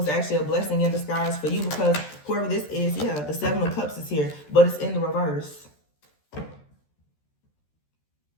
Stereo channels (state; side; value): late; right; 13 ms